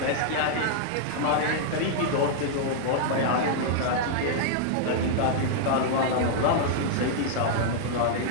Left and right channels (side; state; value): both; different; correlation -0.01